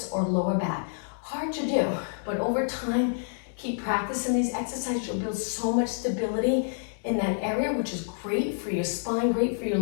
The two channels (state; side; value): silent; right; digital silence